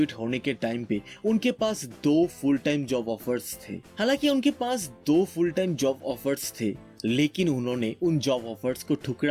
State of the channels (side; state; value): both; identical; correlation 1.00